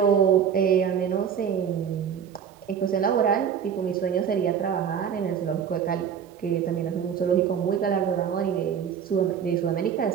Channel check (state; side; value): quieter; left; 7.9 dB